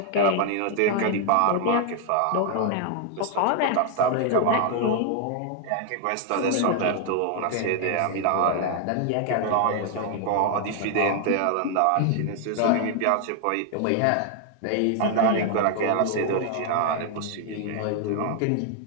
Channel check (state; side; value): different; both; correlation 0.00